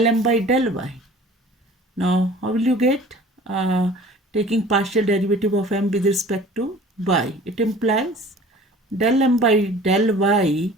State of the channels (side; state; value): both; normal; correlation 0.46